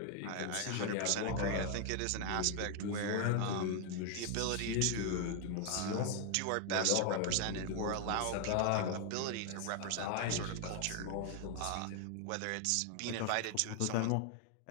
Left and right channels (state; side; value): different; both; correlation 0.00